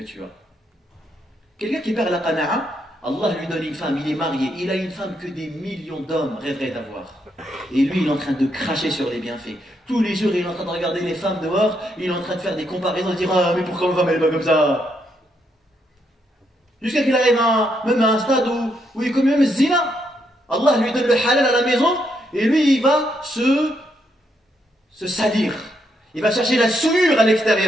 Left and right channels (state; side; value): normal; both; correlation 0.77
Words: tu as. Quelqu'un qui perd la qana'a, Allah lui donne une femme, il est marié, il a une femme que des millions d'hommes rêveraient d'avoir. Et lui, il est en train de cracher sur les bienfaits. Tous les jours, il est en train de regarder les femmes dehors, il est en train de faire des comparaisons, de dire « Ah, mais pourquoi ma femme, elle est pas comme ça ?» Jusqu'à qu'il arrive même à un stade où il commet même zina. Allah lui donne le halal à la maison, et lui, il va se salir. Il va chercher la souillure à